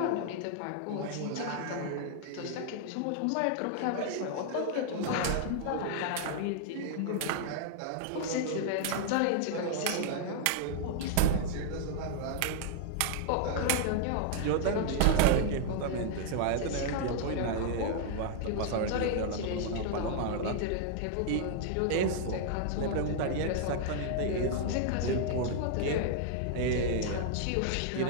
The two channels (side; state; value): both; different; correlation -0.01